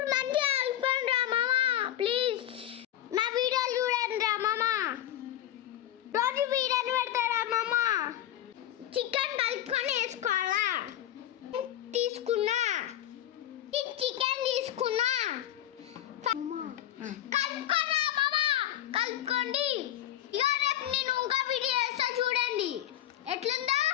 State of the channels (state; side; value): quieter; right; 12.4 dB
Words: మంచిగా కలుపుకోండిరా మామ ప్లీజ్. నా వీడియోలు చూడండిరా మామ. రోజు వీడియోలు పెడతారా మామ. చికెన్ కలుపుకొని వేసుకోవాలా. తీసుకున్నా చికెన్ తీసుకున్నా. కలుపుకోరా మామ. కలుపుకోండి. ఇక రేపు నేను ఇంకా వీడియో వేస్తా చూడండి ఎట్లుందో.